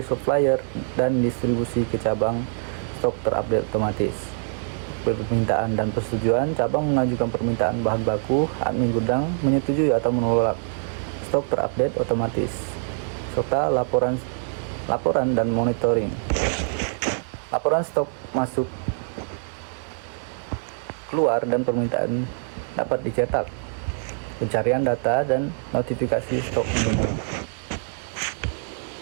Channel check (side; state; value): left; silent; digital silence